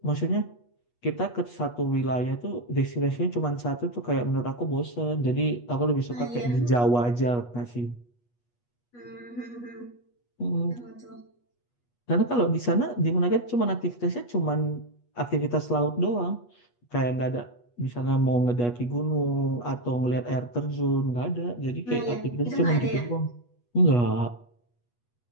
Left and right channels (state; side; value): late; right; 8.3 ms